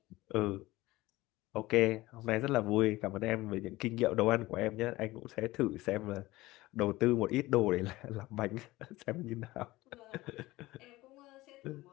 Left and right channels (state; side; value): quieter; right; 18.9 dB